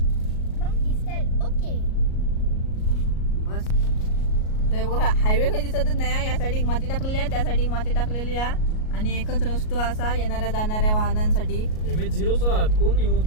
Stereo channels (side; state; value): right; late; 38 ms